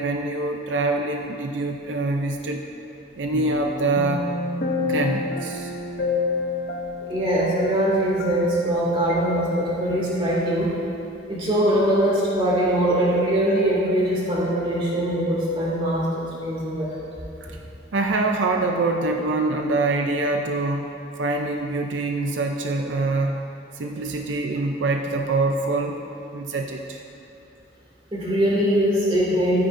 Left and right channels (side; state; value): both; normal; correlation 0.40